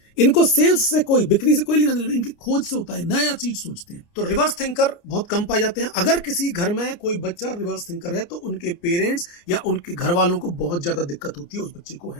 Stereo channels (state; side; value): late; right; 29 ms